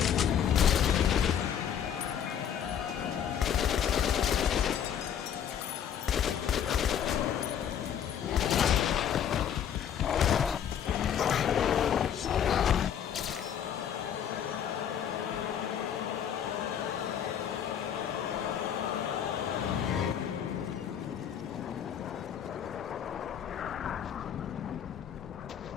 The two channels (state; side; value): quieter; right; 8.9 dB